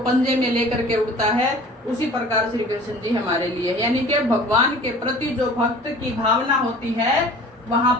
में लेकर के उड़ता है, उसी प्रकार श्री कृष्ण जी हमारे लिए, यानी कि भगवान के प्रति जो भक्त की भावना होती है, वहां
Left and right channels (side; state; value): both; normal; correlation 0.45